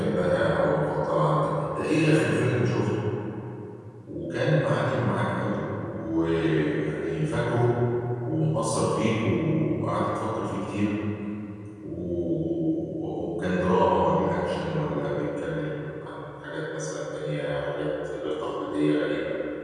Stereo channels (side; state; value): both; identical; correlation 1.00